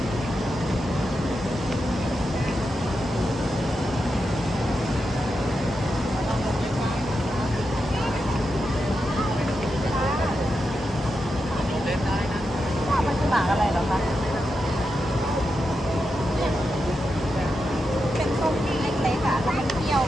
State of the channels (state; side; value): normal; both; correlation 0.87